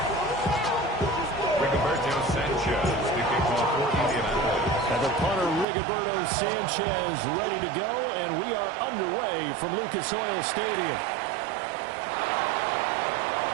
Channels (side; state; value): left; drops out; at 5.7 s